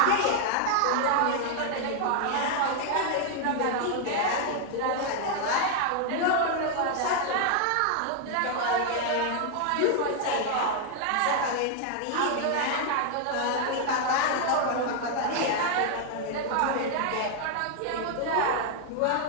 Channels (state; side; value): different; both; correlation 0.00